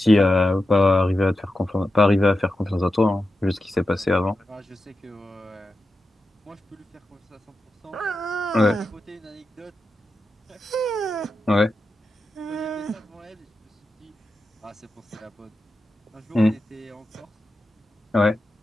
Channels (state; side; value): normal; both; correlation 0.90